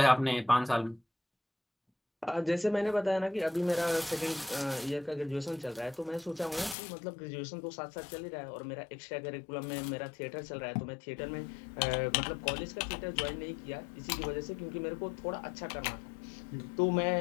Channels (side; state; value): right; drops out; at 6.8 s